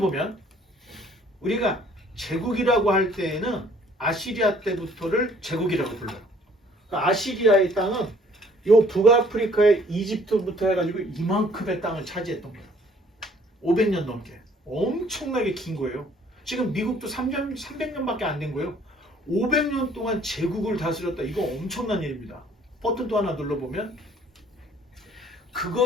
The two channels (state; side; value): normal; both; correlation 0.58